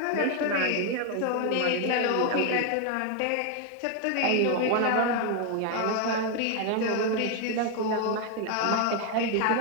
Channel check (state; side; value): different; both; correlation 0.01